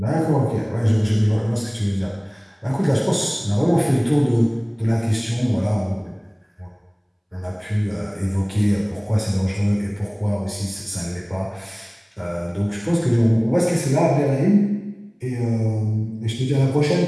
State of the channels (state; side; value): identical; both; correlation 1.00